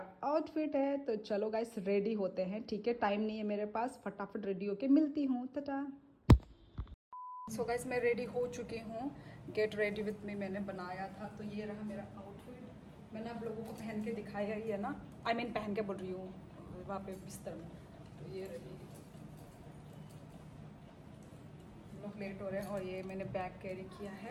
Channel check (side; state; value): both; identical; correlation 1.00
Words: आउटफिट है। तो चलो गाइस रेडी होते हैं, ठीक है, टाइम नहीं है मेरे पास, फटाफट रेडी होके मिलती हूँ, टाटा। सो गाइस मैं रेडी हो चुकी हूँ। गेट रेडी विथ मी मैंने बनाया था। तो ये रहा मेरा आउटफिट। मैंने आप लोगों को पहन के दिखाया ही है ना, पहन के बोल रही हूँ वहाँ पे बिस्तर में। तो ये रही, हम लोग लेट हो रहे हैं। और ये मैंने बैग कैरी किया